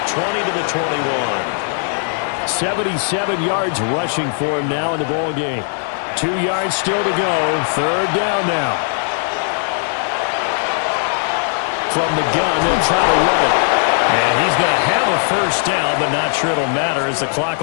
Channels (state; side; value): silent; right; 67 dB below the other